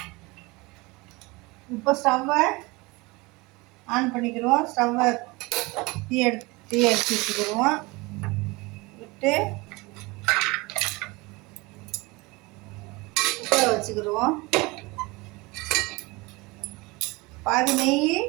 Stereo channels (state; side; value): quieter; left; 24.2 dB